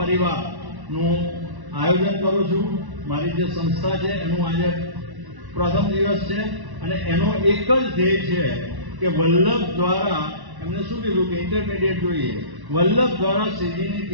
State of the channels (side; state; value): left; late; 1.1 ms